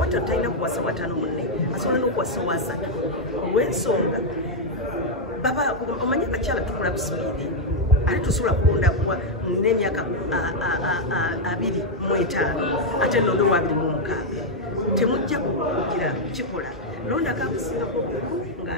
talina kuwasa watano munne asobola n'okuwasa owasatu olw'ensonga omanyi abakyala tukula busipiidi ate tusobola kulonda n'emyaka 25 ate londo wa 26 temujja kugira kikola londa kakusingako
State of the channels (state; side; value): normal; both; correlation -0.01